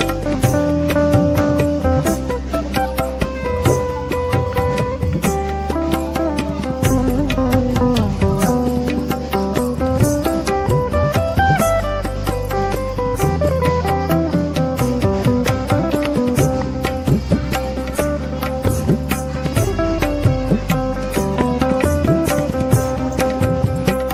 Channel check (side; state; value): both; identical; correlation 1.00